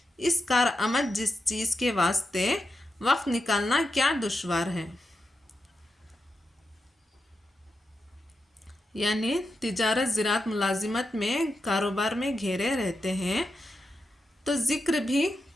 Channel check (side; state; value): both; normal; correlation 0.87